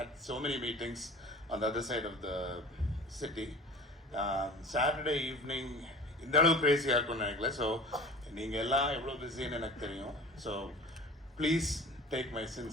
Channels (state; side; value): normal; both; correlation 0.40